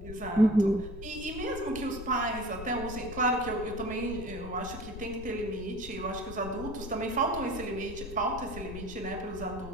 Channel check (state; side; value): noise; left; rumble, 10 dB below the sound